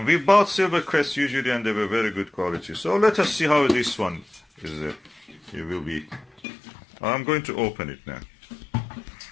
We bought Silvercrest usually, and they were very good quality. So let us see how this one is. It will be. I'm going to open it now.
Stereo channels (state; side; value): drops out; right; at 6.4 s